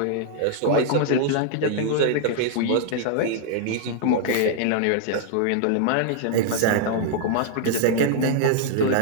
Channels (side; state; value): both; different; correlation -0.01